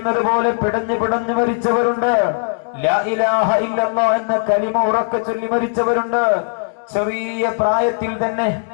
പോലെ പിടഞ്ഞു പിടഞ്ഞു മരിച്ചവരുണ്ട്. ലാ ഇലാഹ ഇല്ലല്ലാഹ് എന്ന കലിമ ഉറക്കെ ചൊല്ലി മരിച്ചവരുണ്ട്. ചെറിയ പ്രായത്തിൽ തന്നെ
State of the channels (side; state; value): right; silent; digital silence